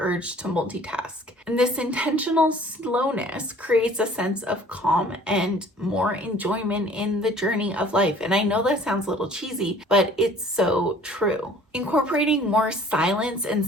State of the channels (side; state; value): both; normal; correlation 0.52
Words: to multitask. And this intentional slowness creates a sense of calm and more enjoyment in the journey of life. And I know that sounds a little cheesy, but it's so true. Incorporating more silence and